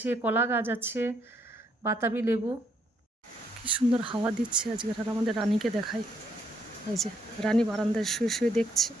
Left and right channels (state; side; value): normal; both; correlation 0.71